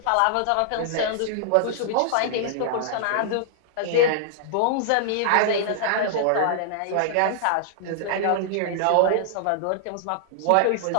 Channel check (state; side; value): different; both; correlation -0.01